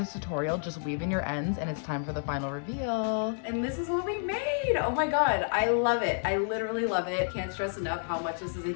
tutorial. Just weave in your ends and it's time for the final reveal. And this is what we made. Oh my God, I love it. I literally love it. Can't stress enough how much this is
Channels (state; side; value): silent; right; 58 dB below the other